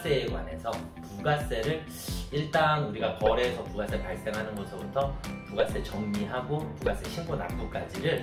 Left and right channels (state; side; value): identical; both; correlation 1.00